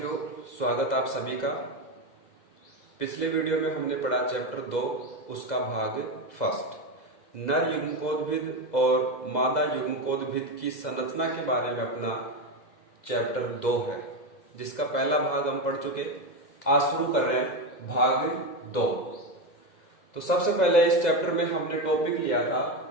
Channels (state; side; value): late; right; 2.0 ms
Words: स्वागत आप सभी का। पिछले वीडियो में हमने पढ़ा चैप्टर 2, उसका भाग फर्स्ट, नर युग्मकोद्भिद और मादा युग्मकोद्भिद की संरचना के बारे में अपना चैप्टर 2 है, जिसका पहला भाग हम पढ़ चुके। आज शुरू कर रहे हैं भाग 2। तो सबसे पहले इस चैप्टर में हमने टॉपिक लिया था